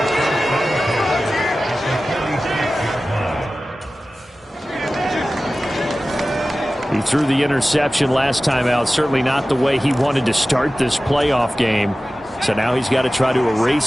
He threw the interception last time out. Certainly not the way he wanted to start this playoff game. So now he's got to try to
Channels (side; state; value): both; normal; correlation 0.96